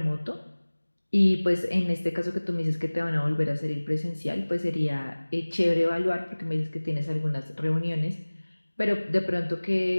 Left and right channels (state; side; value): inverted; both; correlation -1.00